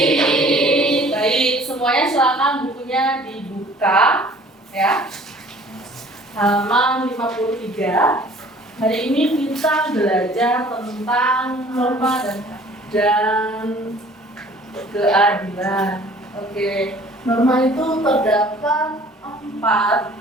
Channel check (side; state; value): both; normal; correlation 0.52